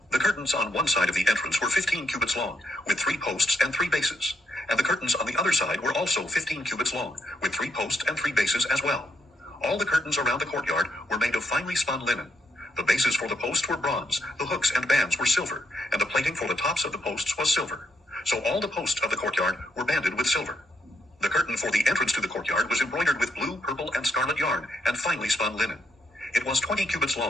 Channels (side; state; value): both; normal; correlation 0.77